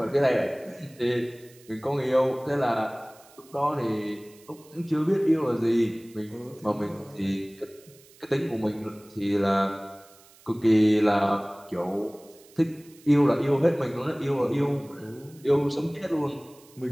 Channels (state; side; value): noise; right; hiss, 26 dB below the sound